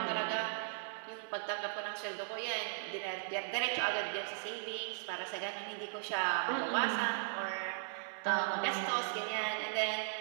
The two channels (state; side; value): silent; left; digital silence